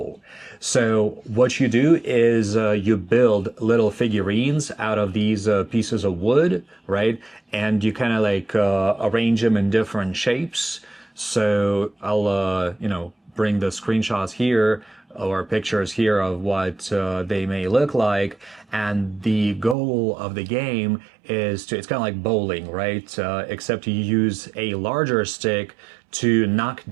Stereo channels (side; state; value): left; drops out; at 19.8 s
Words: So what you do is you build little figurines out of these pieces of wood, right? And you kind of like arrange them in different shapes. So I'll, bring the screenshots here or pictures here of what they may look like. And the goal of the game is to, it's kind of like bowling, right? Except you use a larger stick to knock